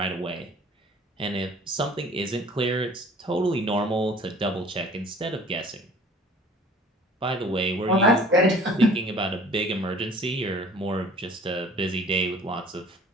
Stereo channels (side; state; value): both; normal; correlation 0.49